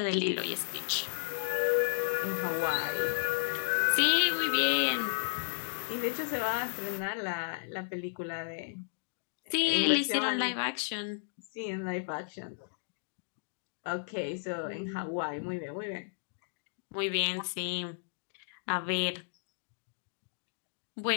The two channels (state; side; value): silent; right; digital silence